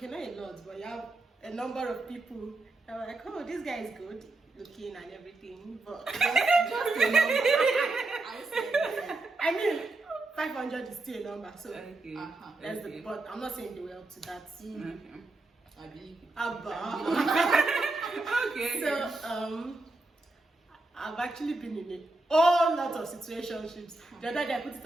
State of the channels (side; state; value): left; quieter; 3.0 dB